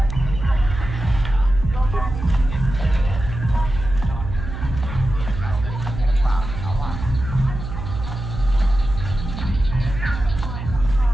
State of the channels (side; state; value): right; noise; hum, 7 dB below the sound